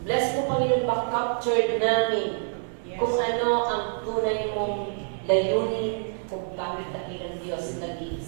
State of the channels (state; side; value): silent; left; 59 dB below the other